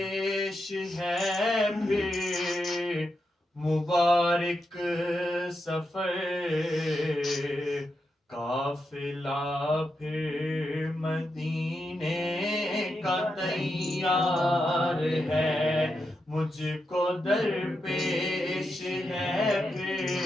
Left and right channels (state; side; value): normal; both; correlation 0.86